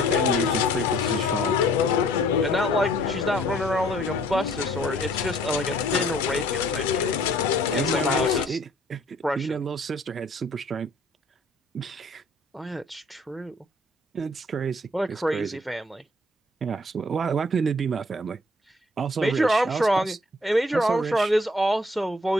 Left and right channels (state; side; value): normal; both; correlation 0.57